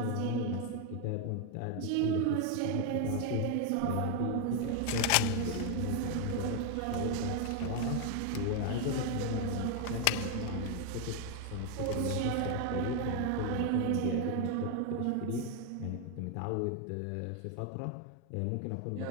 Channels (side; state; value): both; different; correlation 0.01